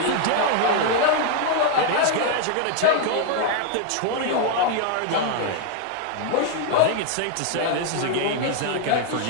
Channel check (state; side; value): different; both; correlation 0.00